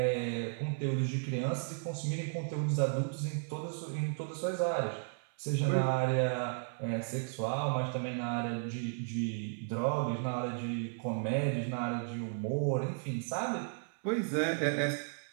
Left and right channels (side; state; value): left; silent; 55 dB below the other